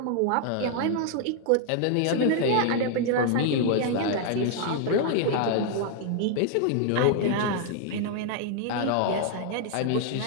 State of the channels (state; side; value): different; both; correlation 0.00